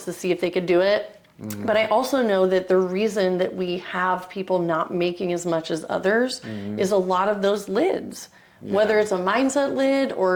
to see if they could do it. But I also know that the reason that we have people not making as much as others is a lot of those lids. Whether it's a mindset lid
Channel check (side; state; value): both; identical; correlation 1.00